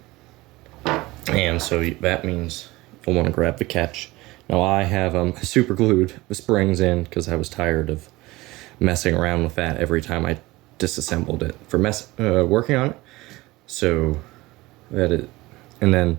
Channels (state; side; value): quieter; left; 20.2 dB